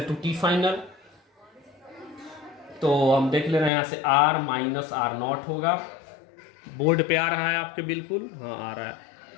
to T final. तो हम देख ले रहे हैं यहाँ से आर माइनस आर नॉट होगा, बोर्ड पे आ रहा है आपके, बिल्कुल हाँ आ रहा है,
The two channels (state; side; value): drops out; right; at 3.7 s